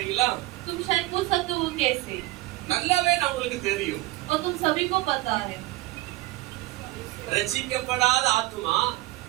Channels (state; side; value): quieter; left; 19.3 dB